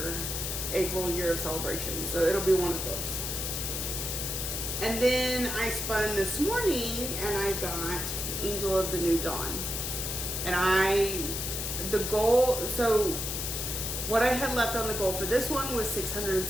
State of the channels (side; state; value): left; noise; hiss, 3 dB below the sound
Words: April Year of Celebration. So it'll be one of those. And then I spun this morning and I got Angel of the New Dawn. And the goal, so what I had left on the goal for this one was